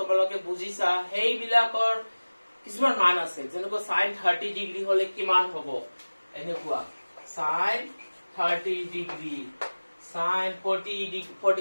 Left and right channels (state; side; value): inverted; both; correlation -1.00